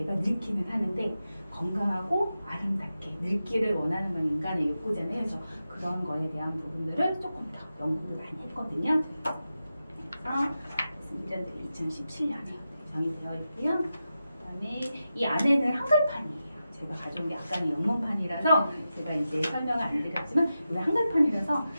늙기는 하는데 건강하고 아름답게 늙기를 원하는 건 인간의 욕구잖아요. 그래서 그런 거에 대한 부분들을 조금 더 연구를 많이 했거든요. 그래서 2017년에 제정이 되어 있고요. 그다음에 이 안에는 한글판이에요. 제가 가져온 게 아까는 영문판이라서 제가 이제 설명을 안 드렸지만 우리 한글판이라서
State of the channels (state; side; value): inverted; both; correlation -0.91